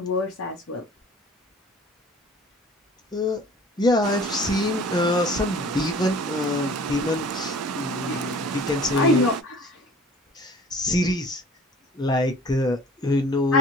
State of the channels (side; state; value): both; normal; correlation 0.46